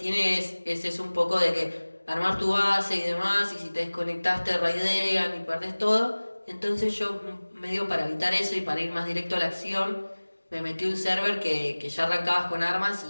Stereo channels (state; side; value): inverted; both; correlation -1.00